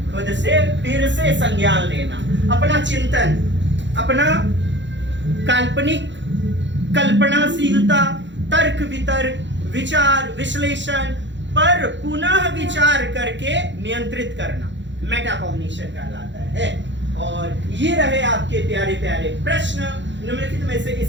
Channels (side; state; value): left; late; 0.53 ms